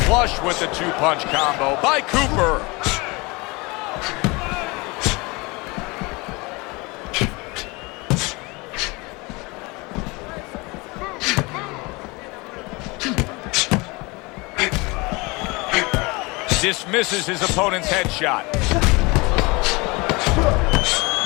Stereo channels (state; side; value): quieter; right; 25.6 dB